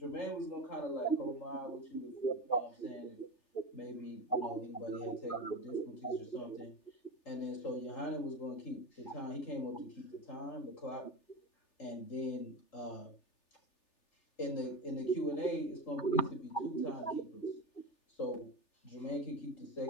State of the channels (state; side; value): late; right; 3.4 ms